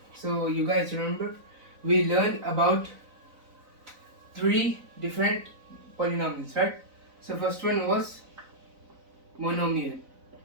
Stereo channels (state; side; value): late; left; 4.0 ms